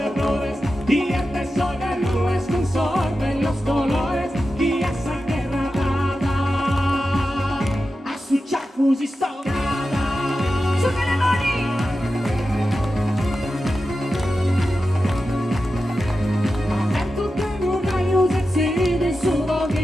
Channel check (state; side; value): normal; both; correlation 0.91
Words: Y este sol de nubes consorben los colores, y esa guerra dada a su chafus y stocada. Su che le mani!